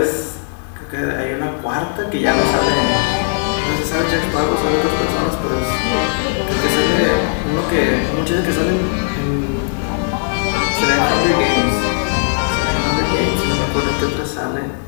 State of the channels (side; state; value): right; silent; 65 dB below the other